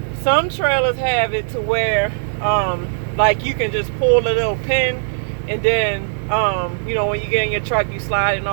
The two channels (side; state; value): left; silent; digital silence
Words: Some trailers have it to where like you can just pull a little pin, and then you know, when you get in your truck you slide and